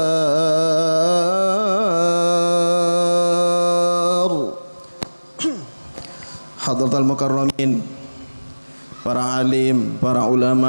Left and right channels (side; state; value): both; inverted; correlation -1.00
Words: Hadratal mukarramin, para alim, para